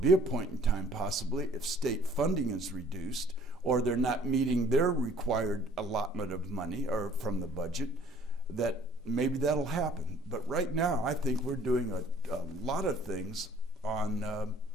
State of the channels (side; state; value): both; normal; correlation 0.55